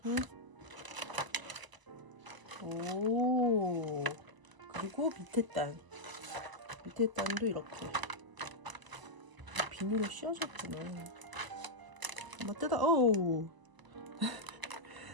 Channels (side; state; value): left; late; 1.0 ms